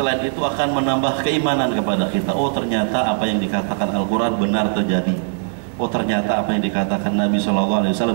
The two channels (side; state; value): left; silent; 66 dB below the other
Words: itu akan menambah keimanan kepada kita. Oh, ternyata apa yang dikatakan Al-Quran benar terjadi. Oh, ternyata apa yang dikatakan Nabi SAW